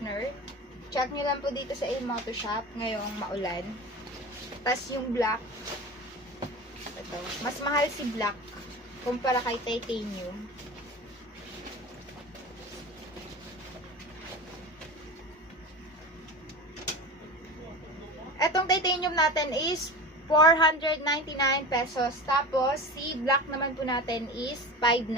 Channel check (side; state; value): both; normal; correlation 0.31